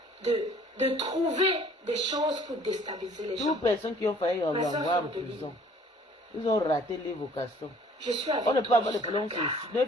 de trouver des choses pour déstabiliser les gens. Toutes les personnes qui ont failli avoir en prison, ils ont raté les vocations. Je suis avec on ne peut pas avoir de problème. Il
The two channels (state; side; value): normal; both; correlation 0.55